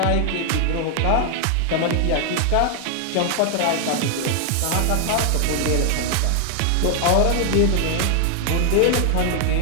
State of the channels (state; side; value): different; both; correlation 0.00